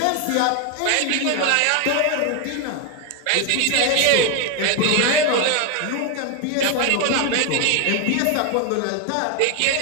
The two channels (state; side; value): different; both; correlation 0.01